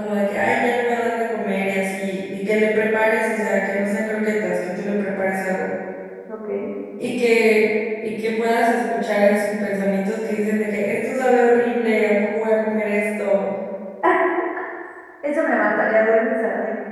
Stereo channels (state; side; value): identical; both; correlation 1.00